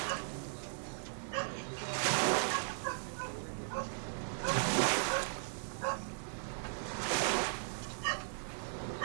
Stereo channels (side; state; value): left; silent; digital silence